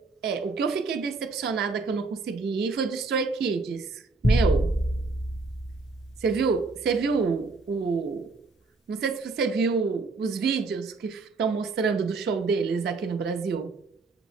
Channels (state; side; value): quieter; left; 3.8 dB